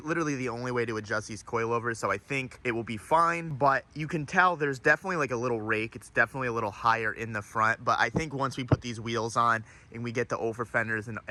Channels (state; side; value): identical; both; correlation 1.00